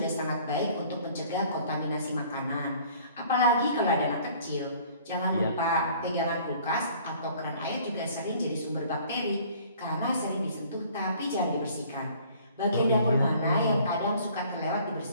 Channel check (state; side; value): inverted; both; correlation -0.54